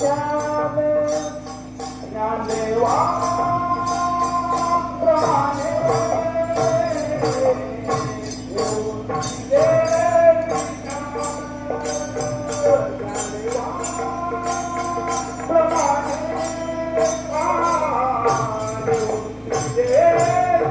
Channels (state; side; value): identical; both; correlation 1.00